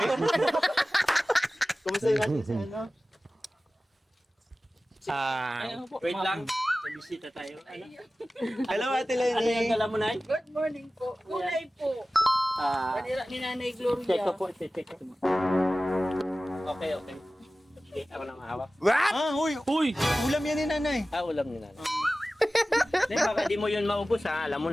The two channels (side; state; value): both; normal; correlation 0.96